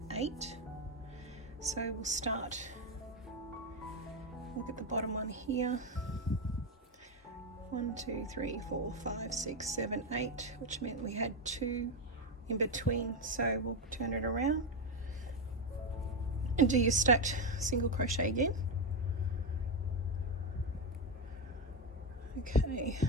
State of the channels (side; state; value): both; normal; correlation 0.09